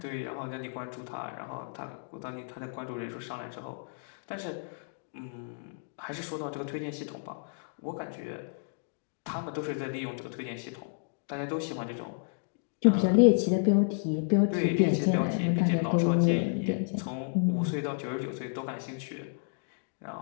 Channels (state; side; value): silent; right; digital silence